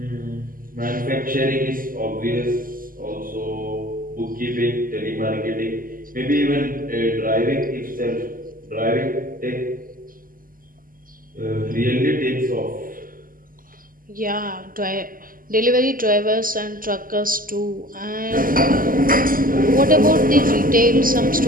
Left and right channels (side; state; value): left; late; 0.41 ms